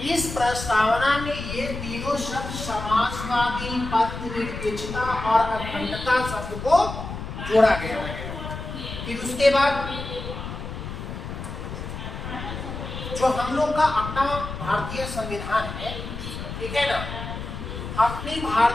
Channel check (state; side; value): noise; left; rumble, 8 dB below the sound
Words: इस प्रस्तावना में ये तीनों शब्द समाजवादी, पंथ निरपेक्षता और अखंडता शब्द को जोड़ा गया है। फिर उसके बाद जो हम लोग का अपना भारतीय संविधान है, ठीक है ना, अपनी